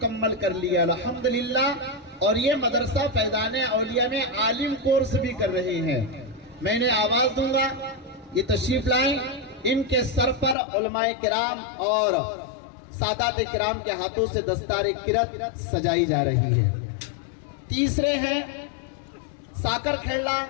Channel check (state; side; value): drops out; right; at 10.6 s